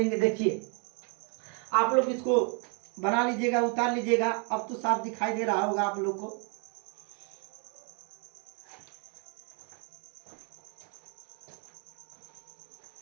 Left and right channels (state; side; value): quieter; left; 37.7 dB